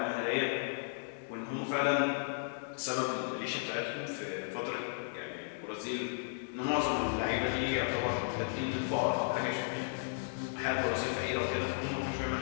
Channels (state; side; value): silent; right; digital silence